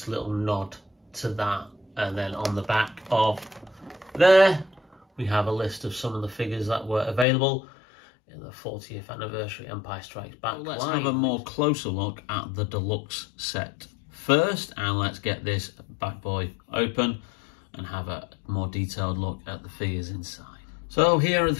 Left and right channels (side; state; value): right; drops out; at 7.2 s